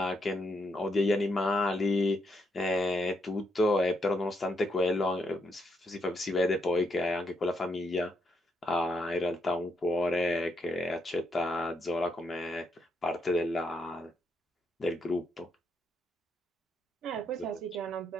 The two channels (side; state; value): both; normal; correlation 0.78